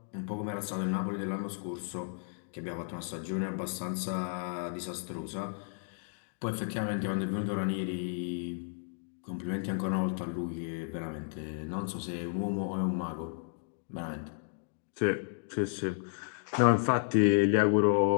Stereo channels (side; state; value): right; silent; digital silence